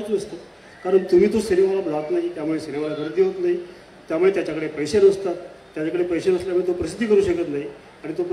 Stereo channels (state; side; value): identical; both; correlation 1.00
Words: नसतं. कारण तुम्ही तो सिनेमाला जात नाही, त्यामुळे सिनेमाला गर्दी होत नाही, त्यामुळे त्याच्याकडे पैसे नसतात. त्याच्याकडे पैसे नसल्यामुळे तो प्रसिद्धी करू शकत नाही, आणि तो